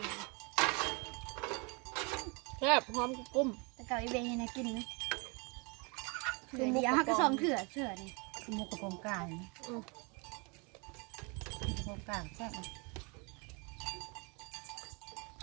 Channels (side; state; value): left; quieter; 31.4 dB